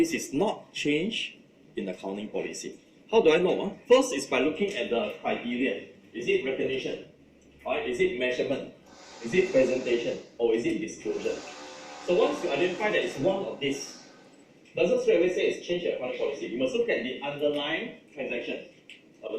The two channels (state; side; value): identical; both; correlation 1.00